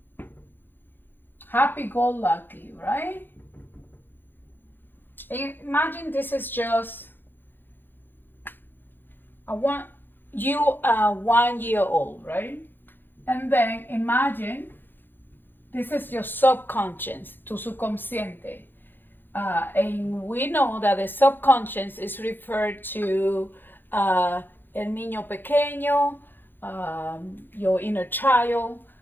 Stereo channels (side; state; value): right; late; 0.096 ms